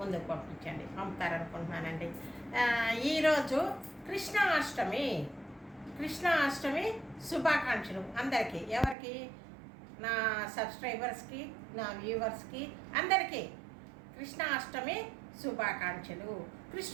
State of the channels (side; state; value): left; drops out; at 9.0 s